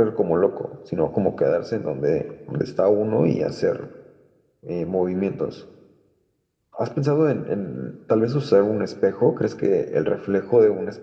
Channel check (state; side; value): identical; both; correlation 1.00